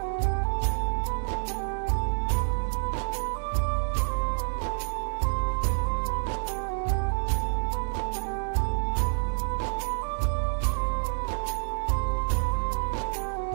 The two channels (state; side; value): silent; left; 57 dB below the other